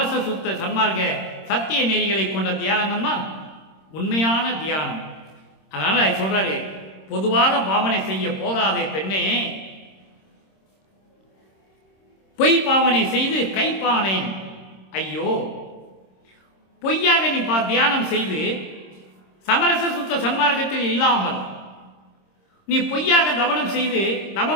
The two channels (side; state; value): right; late; 26 ms